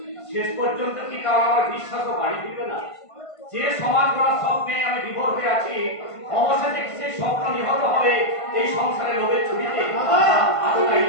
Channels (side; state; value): right; late; 1.5 ms